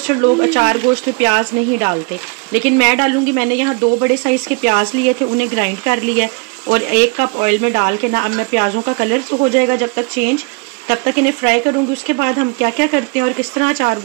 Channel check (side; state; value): left; quieter; 32.7 dB